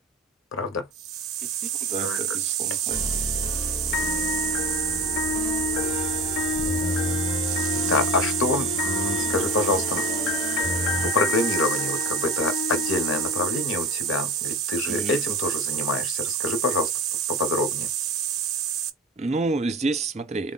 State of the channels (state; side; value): normal; both; correlation 0.31